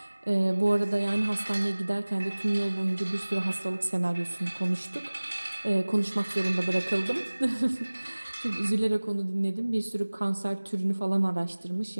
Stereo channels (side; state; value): both; inverted; correlation -1.00